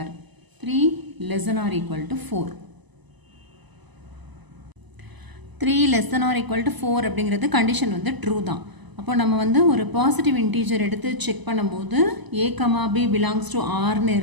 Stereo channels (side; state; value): left; late; 1.0 ms